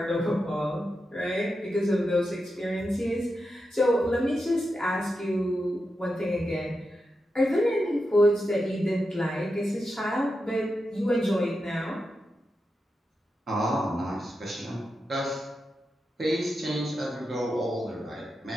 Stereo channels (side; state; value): both; normal; correlation 0.88